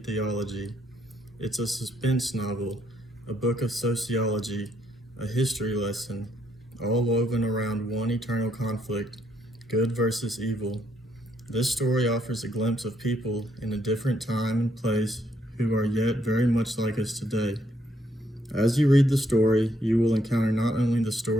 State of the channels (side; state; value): both; normal; correlation 0.72